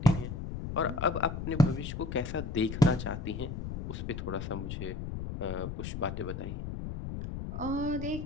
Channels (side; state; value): left; noise; rumble, 6 dB below the sound